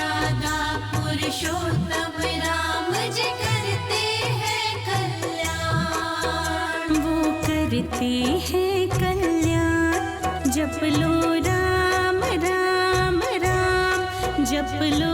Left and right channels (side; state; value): both; identical; correlation 1.00